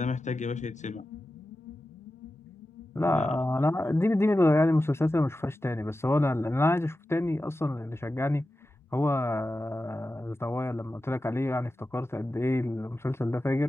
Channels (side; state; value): both; normal; correlation 0.93